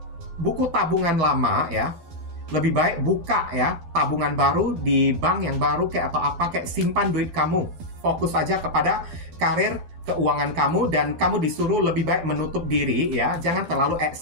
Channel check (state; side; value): late; left; 12 ms